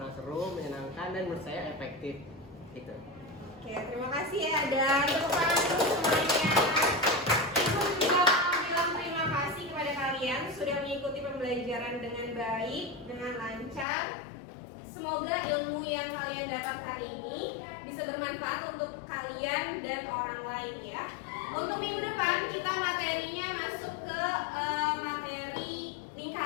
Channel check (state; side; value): drops out; right; at 13.9 s